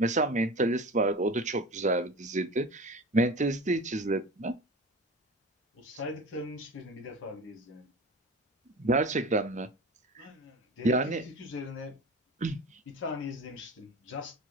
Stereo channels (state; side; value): normal; both; correlation 0.34